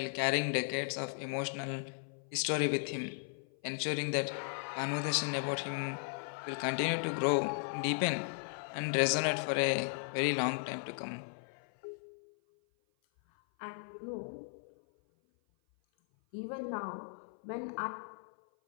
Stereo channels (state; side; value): silent; right; 54 dB below the other